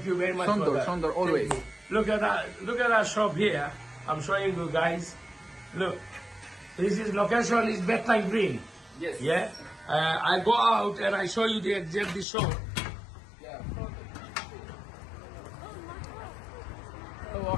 you very much. for that. Sondor, always. Thank you. Look at that shop here. I'm showing you guys. Look, this is location is Bethlehem Green. Yes. Yeah. I go out and I show you the exact shop.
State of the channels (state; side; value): drops out; right; at 12.2 s